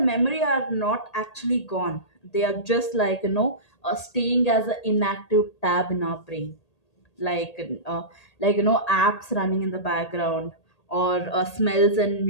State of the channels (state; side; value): late; right; 1.8 ms